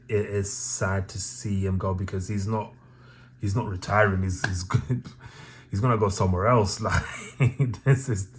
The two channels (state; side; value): identical; both; correlation 1.00